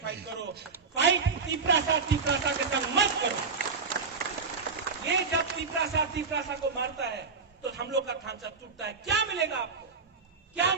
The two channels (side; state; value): left; quieter; 4.9 dB